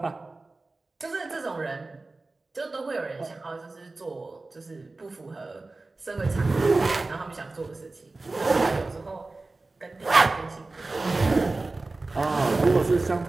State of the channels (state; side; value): quieter; left; 3.3 dB